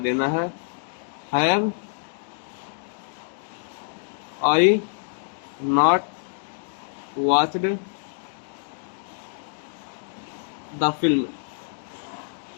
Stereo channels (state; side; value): silent; right; digital silence